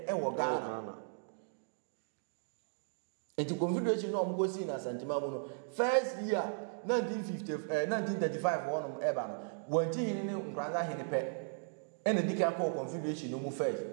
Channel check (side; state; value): left; silent; digital silence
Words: wo Ghana enti confederation no omgo si na Asante mamu no first year 1935 wono eba no wanti hini ne nkranza hini pe ene dika ko confederation no mu first